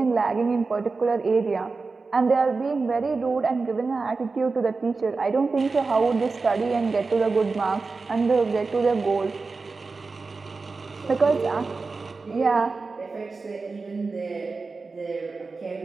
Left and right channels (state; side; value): quieter; left; 4.1 dB